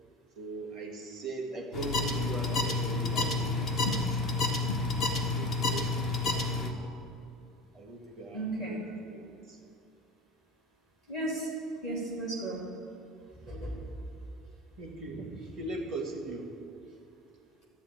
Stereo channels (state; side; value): normal; both; correlation 0.30